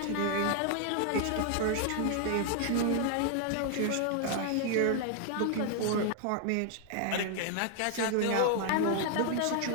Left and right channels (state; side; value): different; both; correlation 0.00